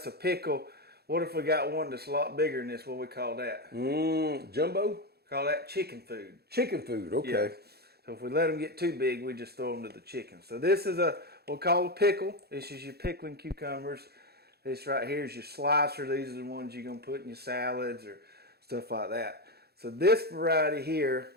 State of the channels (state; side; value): late; left; 0.46 ms